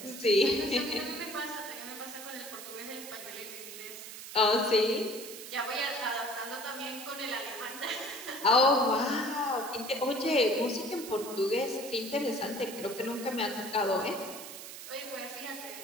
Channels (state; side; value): noise; right; hiss, 11 dB below the sound